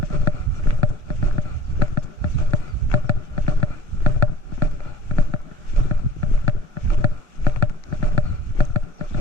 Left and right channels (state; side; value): late; left; 1.0 ms